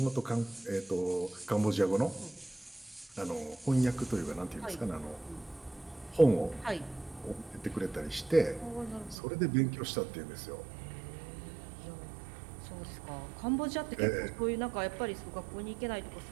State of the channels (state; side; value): drops out; left; at 9.2 s